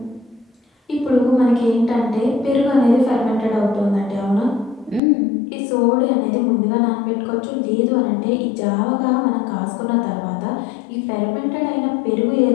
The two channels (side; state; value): right; drops out; at 5.0 s